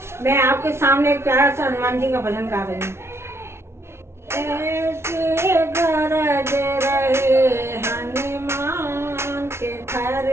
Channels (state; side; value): late; left; 0.12 ms